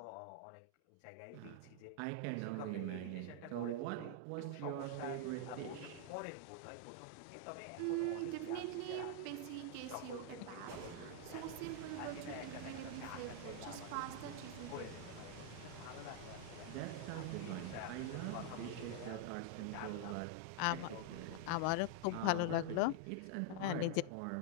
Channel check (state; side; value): different; both; correlation 0.00